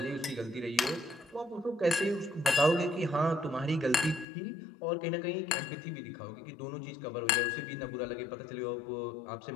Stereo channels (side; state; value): right; drops out; at 4.2 s